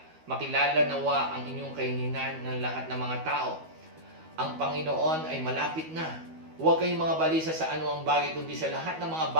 nawa ang inyong kaininan ng lahat ng mga tao. Ang Panginoon ay malapit na. Huwag kayong mga balisa sa anumang bagay, kundi sa lahat ng mga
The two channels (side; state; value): left; late; 13 ms